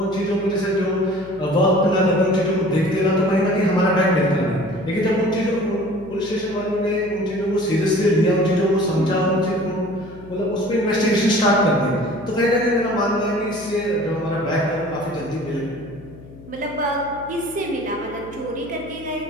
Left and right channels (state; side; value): noise; left; hum, 19 dB below the sound